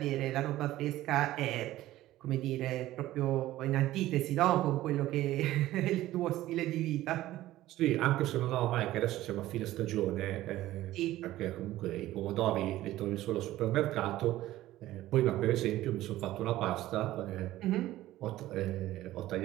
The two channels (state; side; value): quieter; left; 15.4 dB